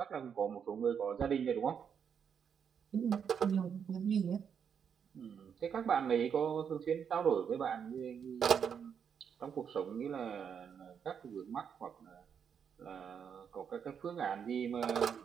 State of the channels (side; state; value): left; quieter; 7.4 dB